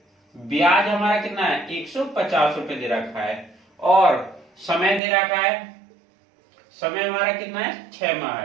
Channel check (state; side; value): drops out; left; at 5.0 s